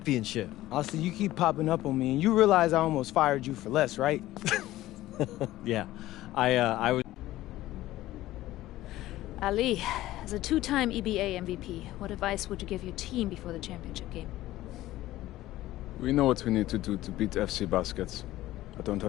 Austin, you keep popping up on me, and you realize I almost fired you for less, right? Yeah, I was... Ali, as a two-time EBA MVP, what advice would you give your team before the championship game? We know what we need to do to beat FC Baskets. I don't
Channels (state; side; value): quieter; right; 15.7 dB